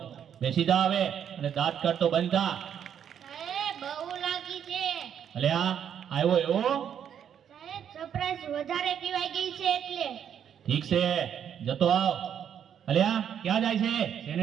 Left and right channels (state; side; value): quieter; left; 8.8 dB